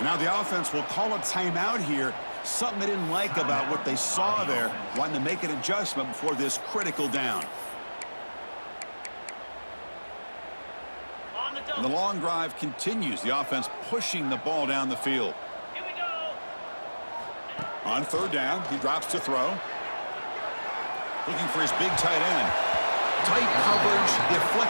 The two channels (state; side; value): inverted; both; correlation -1.00